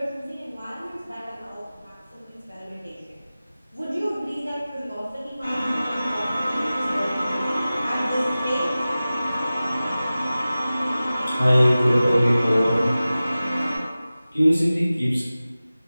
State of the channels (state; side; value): inverted; both; correlation -0.96